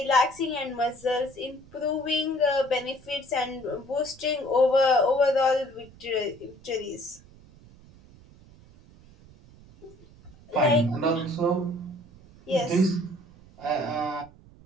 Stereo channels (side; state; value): right; noise; rumble, 24 dB below the sound